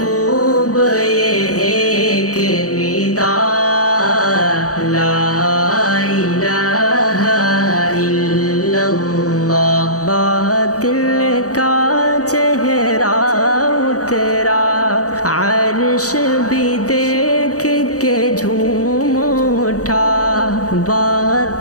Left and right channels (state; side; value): late; right; 0.66 ms